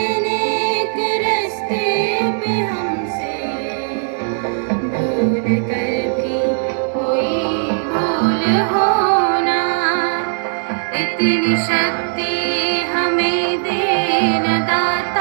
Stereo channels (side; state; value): left; silent; digital silence